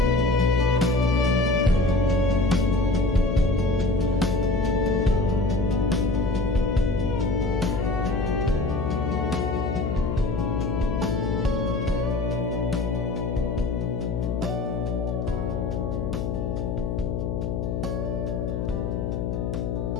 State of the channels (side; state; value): left; noise; hum, 2 dB below the sound